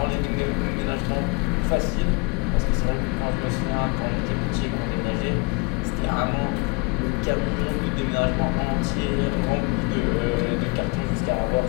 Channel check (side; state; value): right; quieter; 28.3 dB